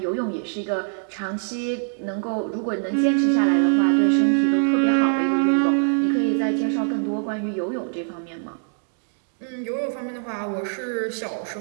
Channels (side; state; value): left; silent; digital silence